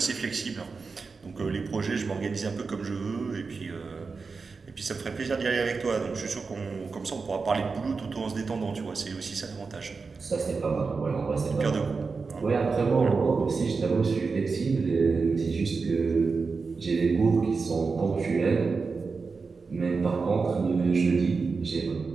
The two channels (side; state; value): left; quieter; 4.6 dB